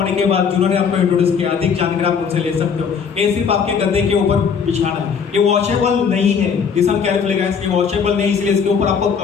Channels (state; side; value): quieter; right; 6.5 dB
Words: के बाद जिन्होंने आपको इंट्रोड्यूस किया, अधिक जानकारी आप उनसे ले सकते हो। ये सिर्फ आपके गद्दे के ऊपर बिछाना है, ये वॉशेबल नहीं है। लिसन केयरफुली गाइस, ये वॉशेबल नहीं, इसलिए इसके ऊपर आपको